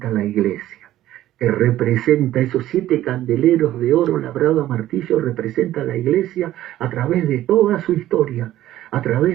la iglesia, que representa esos 7 candeleros de oro labrado a martillo, representa la iglesia a través de toda su historia, a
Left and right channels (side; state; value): left; quieter; 13.8 dB